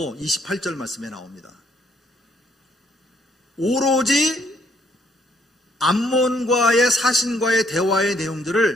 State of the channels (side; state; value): both; normal; correlation 0.69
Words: 28절 말씀에 나옵니다. 오로지 암몬과의 사신과의 대화의